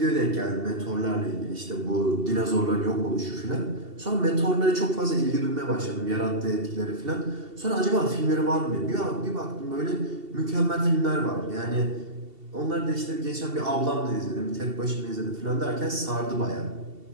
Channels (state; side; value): late; left; 2.7 ms